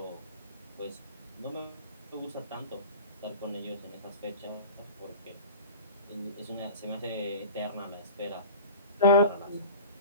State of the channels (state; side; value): inverted; both; correlation -0.37